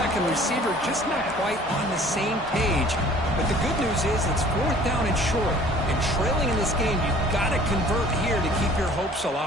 and receiver just not quite on the same page. But the good news is it's fourth down and short. And trailing in this game, you've got to convert here to keep your hopes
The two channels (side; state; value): both; normal; correlation 0.52